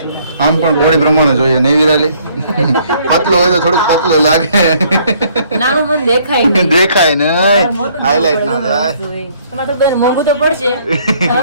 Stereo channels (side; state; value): both; inverted; correlation -0.63